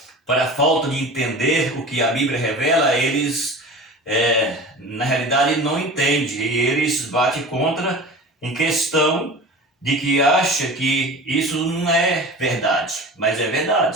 para a falta de entender o que a Bíblia revela, eles, na realidade, não entendem. E eles batem contra em questão de que acha que isso não é verdade, mas é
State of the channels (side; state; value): both; normal; correlation 0.35